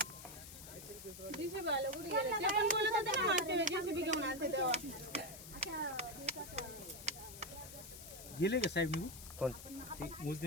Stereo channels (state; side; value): noise; left; hiss, 13 dB below the sound